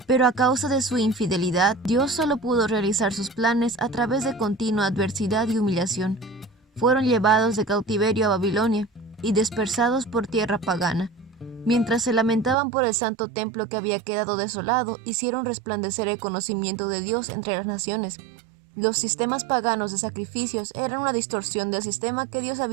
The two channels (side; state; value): left; drops out; at 12.6 s